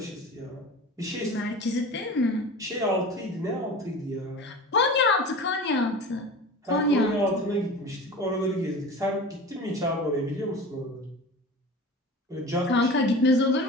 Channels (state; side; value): normal; both; correlation 0.35